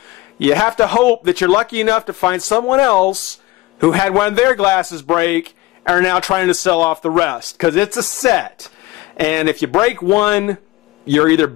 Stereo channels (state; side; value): quieter; right; 19.5 dB